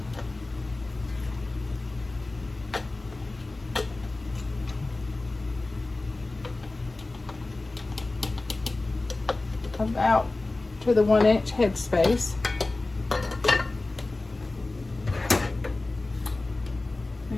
about to the 1-inch headspace.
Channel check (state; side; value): quieter; right; 3.1 dB